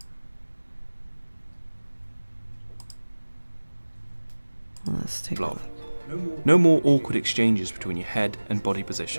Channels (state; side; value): inverted; both; correlation -1.00